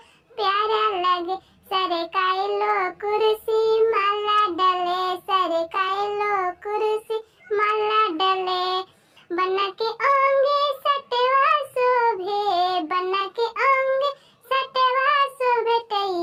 प्यारा लगे सरकाइलो कुर्सी माला डले सरकाइलो कुर्सी माला डले बना के अंगे सटवा शोभे बना के अंगे सटवा शोभे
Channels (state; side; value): identical; both; correlation 1.00